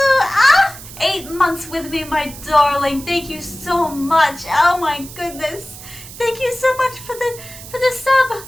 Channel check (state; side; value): noise; right; hiss, 15 dB below the sound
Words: 8 months with me, my darling. Thank you so much. Oh my goodness. Thank you so much for the sub.